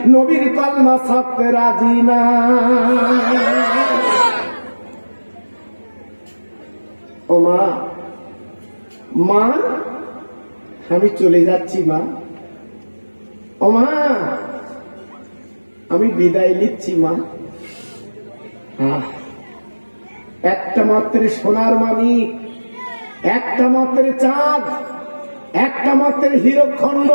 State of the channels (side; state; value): both; inverted; correlation -1.00